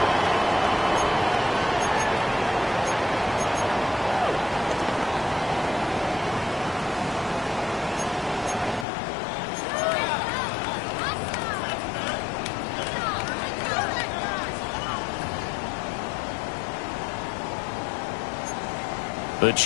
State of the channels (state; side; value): drops out; right; at 8.8 s